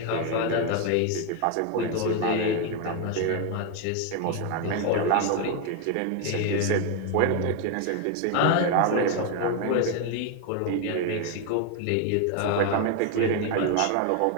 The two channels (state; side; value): different; both; correlation 0.01